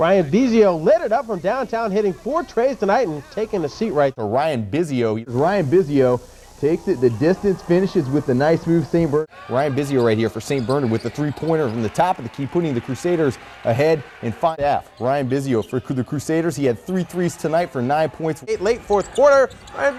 Bisio lit it up from downtown, hitting 4 trays tonight and taking a seat right for Ryan Bisio. Ryan Bisio takes it the distance, finishes with a nice move. St. Bernard. Ryan Bisio right here for St. Bernard with the 3-pointer from the top of the key, putting the Crusaders ahead in 5-half. Ryan Bisio for the Crusaders. He had 3 threes tonight for 9 points. Late fourth quarter,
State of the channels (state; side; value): identical; both; correlation 1.00